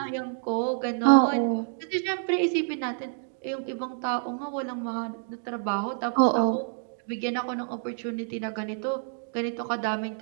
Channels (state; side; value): silent; left; digital silence